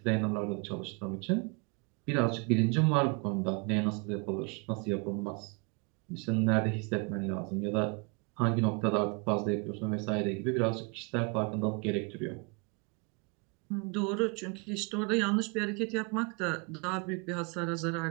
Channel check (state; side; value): quieter; left; 32.2 dB